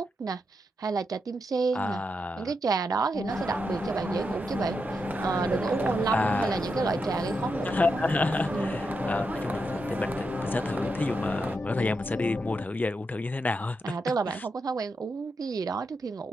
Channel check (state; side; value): normal; both; correlation 0.84